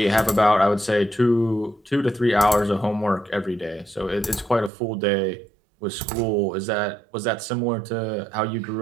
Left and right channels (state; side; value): drops out; left; at 4.7 s